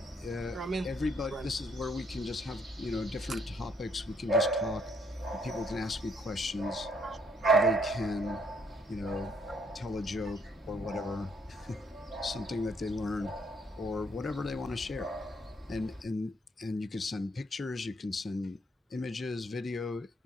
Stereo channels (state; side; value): normal; both; correlation 0.69